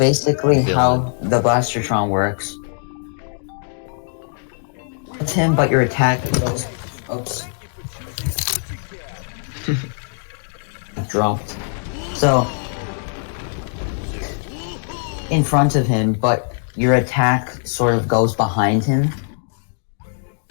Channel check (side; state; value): right; silent; 65 dB below the other